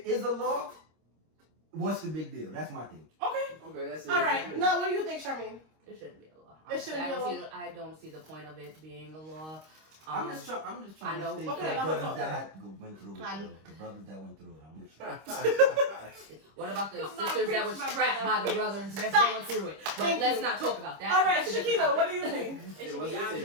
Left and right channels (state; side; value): late; left; 26 ms